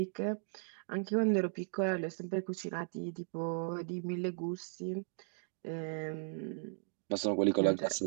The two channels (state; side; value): silent; left; digital silence